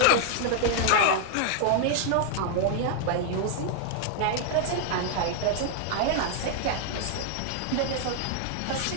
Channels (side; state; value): both; different; correlation 0.00